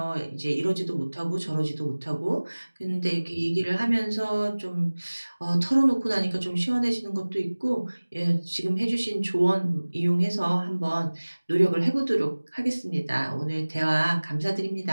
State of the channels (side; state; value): both; inverted; correlation -1.00